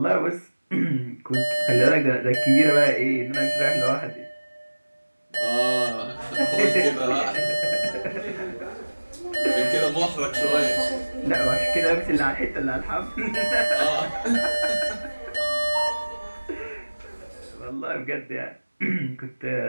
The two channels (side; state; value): both; inverted; correlation -1.00